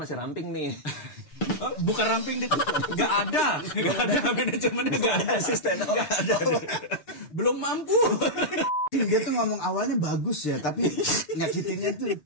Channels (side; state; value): right; late; 6.8 ms